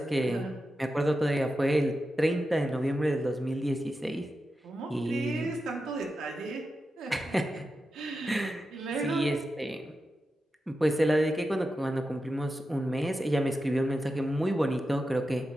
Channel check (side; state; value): both; normal; correlation 0.90